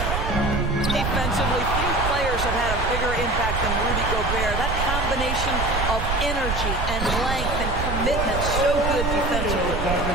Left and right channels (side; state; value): right; noise; rumble, 2 dB below the sound